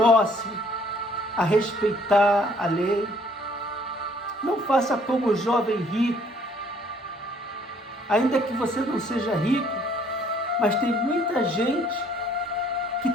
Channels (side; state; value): both; normal; correlation 0.61